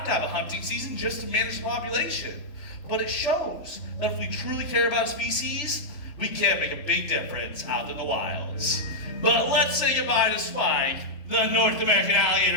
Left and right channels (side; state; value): right; late; 3.0 ms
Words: to have a hunting season just to manage the population. But it shows that if we truly care about species, we can make a big difference out in the wilds. But let's say goodbye to Spike, the North American